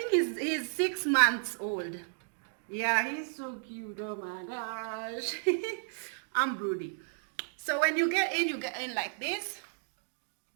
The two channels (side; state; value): left; silent; digital silence